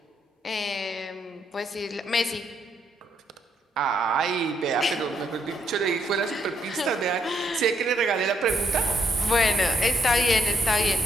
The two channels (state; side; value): normal; both; correlation 0.75